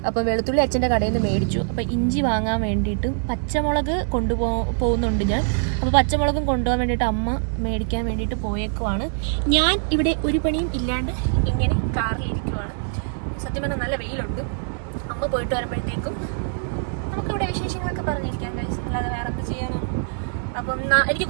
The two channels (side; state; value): left; silent; 63 dB below the other